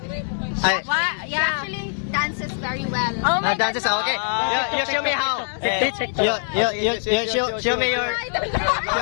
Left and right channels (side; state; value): right; silent; digital silence